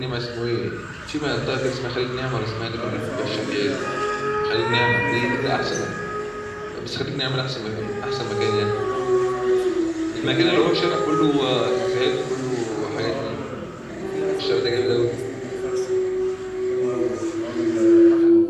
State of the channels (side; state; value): both; identical; correlation 1.00